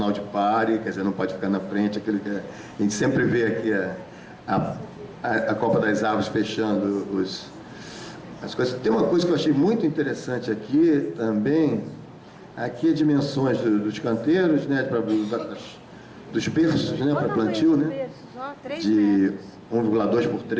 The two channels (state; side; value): identical; both; correlation 1.00